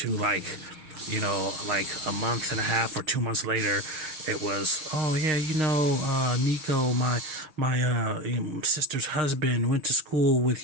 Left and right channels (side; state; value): left; late; 6.5 ms